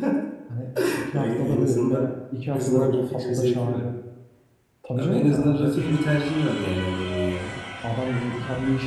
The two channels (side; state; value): both; identical; correlation 1.00